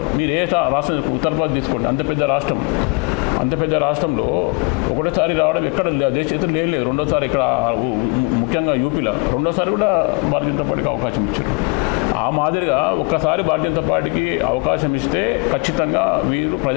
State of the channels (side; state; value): right; quieter; 31.8 dB